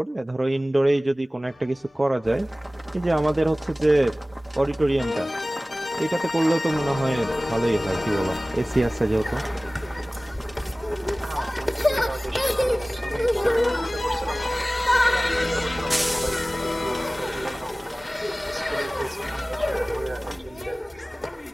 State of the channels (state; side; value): normal; both; correlation 0.98